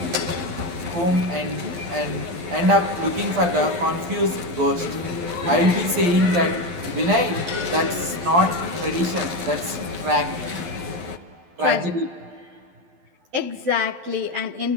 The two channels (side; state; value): left; late; 12 ms